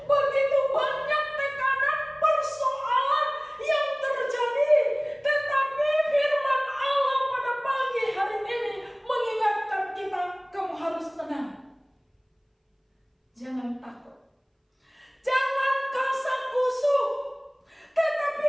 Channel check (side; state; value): both; identical; correlation 1.00